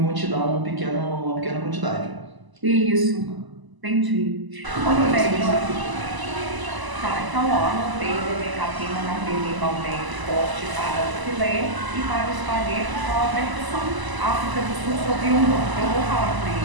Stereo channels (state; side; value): late; left; 1.0 ms